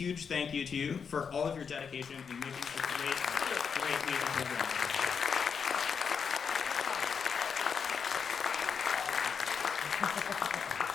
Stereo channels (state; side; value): quieter; right; 6.3 dB